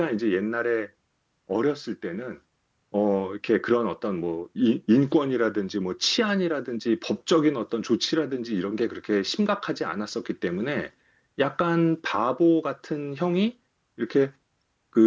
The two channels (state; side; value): identical; both; correlation 1.00